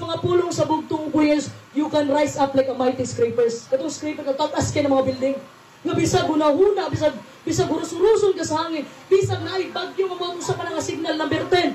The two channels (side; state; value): both; identical; correlation 1.00